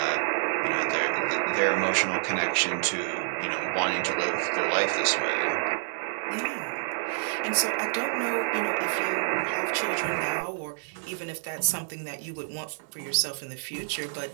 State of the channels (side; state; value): left; silent; 59 dB below the other